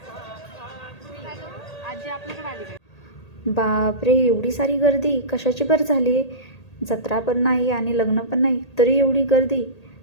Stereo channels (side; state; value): right; late; 1.8 ms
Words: आजी आपल्याकडे आली. बापरे, एवढी सारी गर्दी कशाची बरं झाली आहे? जत्रा पण नाही आणि लग्न पण नाही तरी एवढी गर्दी.